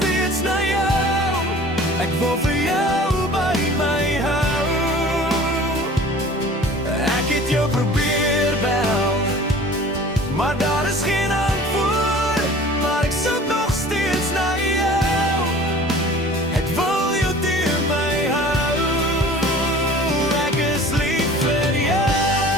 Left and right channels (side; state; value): both; normal; correlation 0.45